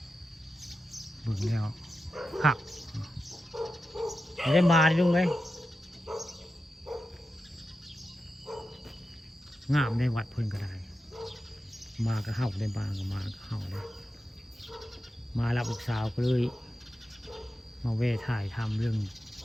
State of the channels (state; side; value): normal; both; correlation 0.90